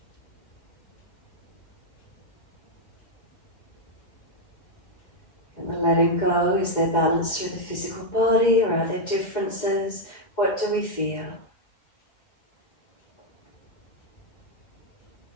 And the letting go, is there balance through the physical body, or are there differences? What do we feel?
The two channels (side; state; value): right; late; 2.1 ms